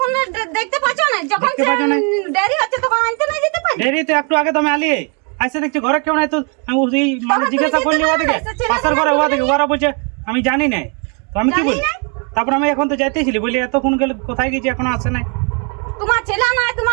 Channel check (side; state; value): left; quieter; 36.8 dB